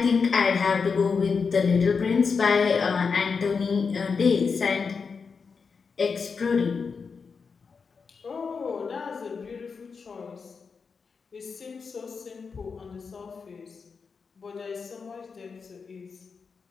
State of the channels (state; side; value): quieter; right; 5.3 dB